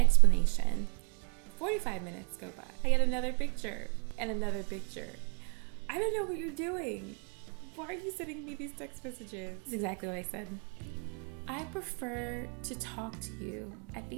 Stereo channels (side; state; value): left; quieter; 39.6 dB